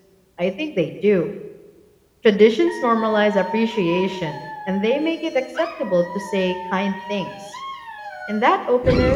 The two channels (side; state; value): both; identical; correlation 1.00